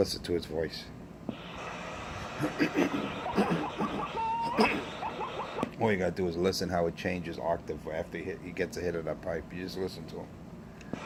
to his voice. All you gotta do is listen how it changes octave after he gets a hit of that pipe. You just listen to him.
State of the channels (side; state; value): both; identical; correlation 1.00